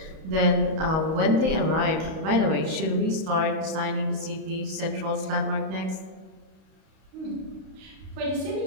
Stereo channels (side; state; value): left; late; 32 ms